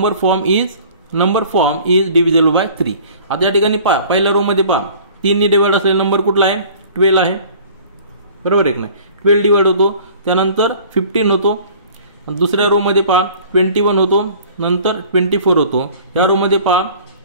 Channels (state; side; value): inverted; both; correlation -0.48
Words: form is divisible by 3. आता या ठिकाणी पहा, पहिल्या रो मध्ये पहा, 3 ने डिवाइड असलेला नंबर कुठला आहे? 12 आहे. बरोबर आहे की नाही? 12 डिवाइड होतो, त्यानंतर 15 होतो. दुसऱ्या रो मध्ये पहा 21 होतो, नंतर 24 होतो. या रो मध्ये पहा